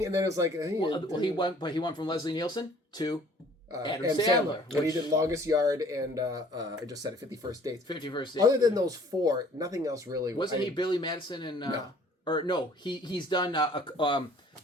and then it was like... he went from Leslie Nielsen to Adam and Sandler. When he did Longest Yard and I just said it, 50 First Dates. 50 First Dates. Other than those 4, nothing else really. Wasn't he Billy Madison and... No. Or no, he's done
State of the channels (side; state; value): both; normal; correlation 0.55